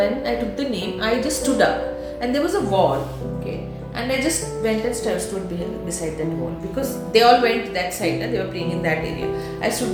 I took the name, I just stood up. And there was a wall. Okay? And I just went and stood beside that wall. Because they all went that side. They were playing in that area. I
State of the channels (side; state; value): both; identical; correlation 1.00